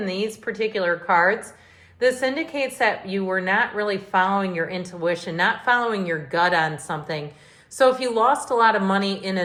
these particular cards, this indicates that you were not really following your intuition, not following your gut on something. So if you lost a lot of money in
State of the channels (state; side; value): identical; both; correlation 1.00